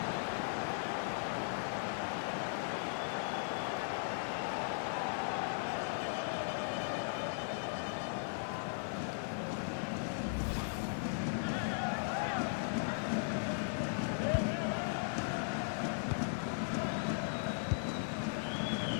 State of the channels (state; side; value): silent; right; 53 dB below the other